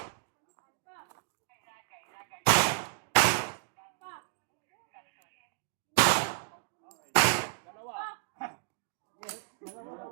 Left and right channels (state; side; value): silent; left; digital silence